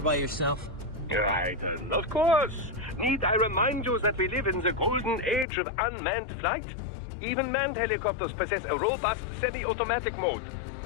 yourself? Right, of course. Need I remind you that we live in the golden age of unmanned flight? Even manned helicopters possess a robust semi-automatic mode.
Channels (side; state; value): right; drops out; at 5.5 s